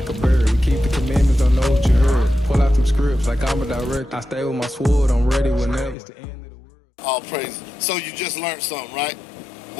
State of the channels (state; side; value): drops out; right; at 6.0 s